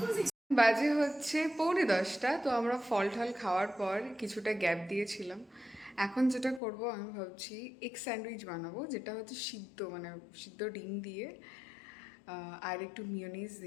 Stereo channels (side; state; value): right; drops out; at 6.6 s